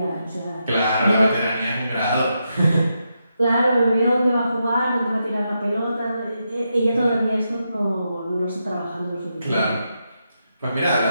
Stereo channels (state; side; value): inverted; both; correlation -0.84